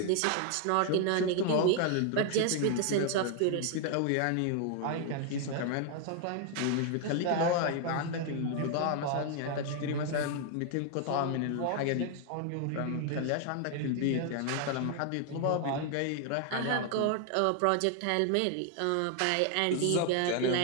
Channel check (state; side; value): different; both; correlation 0.00